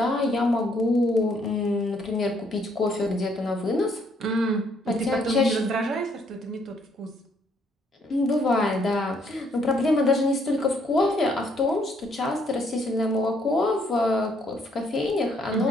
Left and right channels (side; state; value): both; normal; correlation 0.69